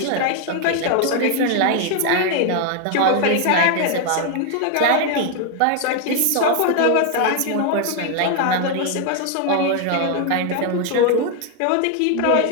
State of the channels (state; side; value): different; both; correlation 0.00